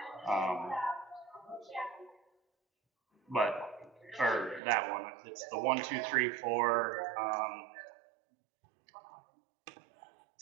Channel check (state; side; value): drops out; left; at 4.6 s